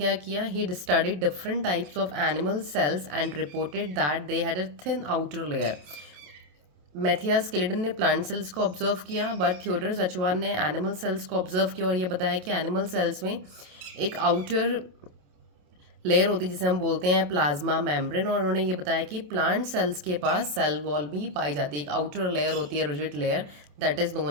किया? He studied different types of animal cells and reported that they had a thin outer layer. Matthias Schleiden ने प्लांट सेल्स को ऑब्जर्व किया, बट थियोडर सचवान ने एनिमल सेल्स को ऑब्जर्व किया और ये बताया कि एनिमल सेल्स में एक आउटर लेयर होती है जिसे हम बोलते हैं प्लाज्मा मेम्ब्रेन। और उन्होंने ये बताया कि प्लांट सेल्स के पास सेल वॉल भी पाई जाती है। एक आउटर लेयर होती है, rigid layer, that is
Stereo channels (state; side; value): late; left; 27 ms